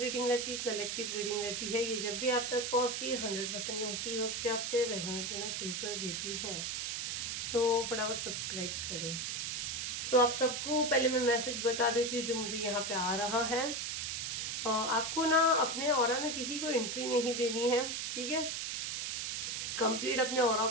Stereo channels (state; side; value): noise; right; hiss, 2 dB below the sound